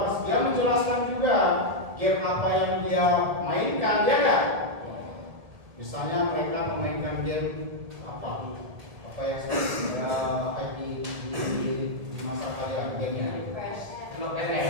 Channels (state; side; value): late; left; 1.7 ms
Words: dia menjelaskan juga game apa yang dia mainkan, ya kan? Misalnya mereka memainkan game apa yang hype di masa kalian gamenya?